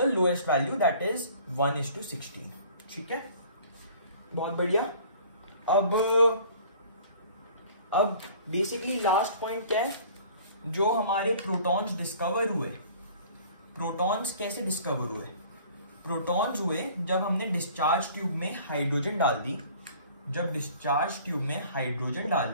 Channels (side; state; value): both; inverted; correlation -0.50